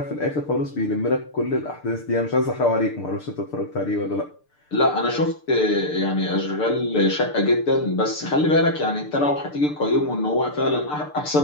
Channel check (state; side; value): late; right; 6.7 ms